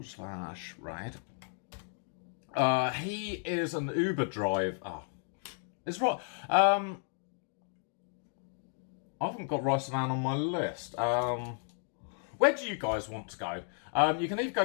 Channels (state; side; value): silent; right; 55 dB below the other